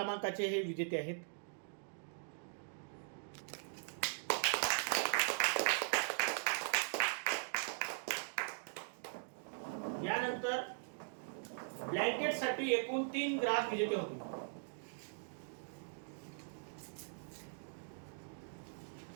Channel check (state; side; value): silent; left; digital silence